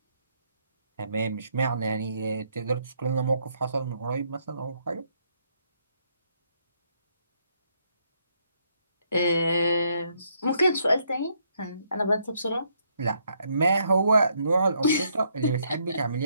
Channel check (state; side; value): inverted; both; correlation -0.73